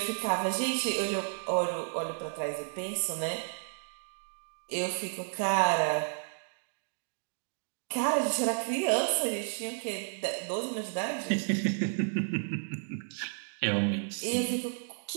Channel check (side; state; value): left; silent; digital silence